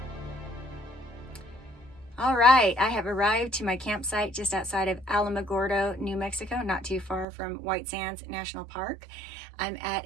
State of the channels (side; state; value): left; drops out; at 7.2 s